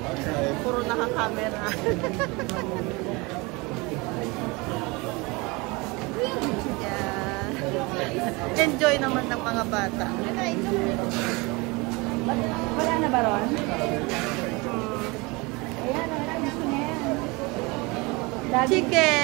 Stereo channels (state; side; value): quieter; left; 25.8 dB